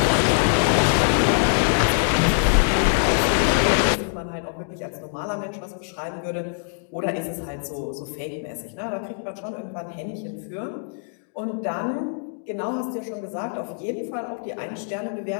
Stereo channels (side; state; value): right; silent; digital silence